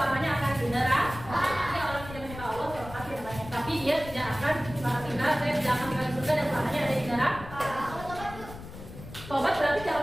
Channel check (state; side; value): noise; left; rumble, 14 dB below the sound